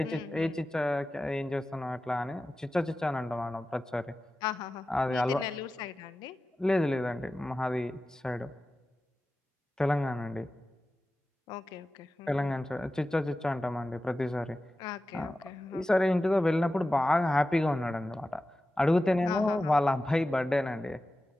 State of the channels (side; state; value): both; normal; correlation 0.94